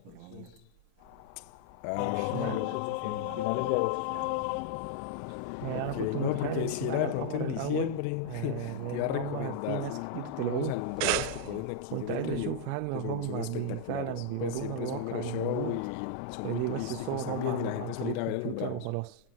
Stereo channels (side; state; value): both; different; correlation 0.00